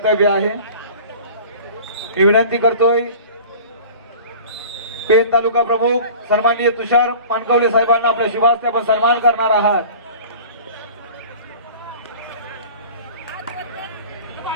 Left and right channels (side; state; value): both; inverted; correlation -0.42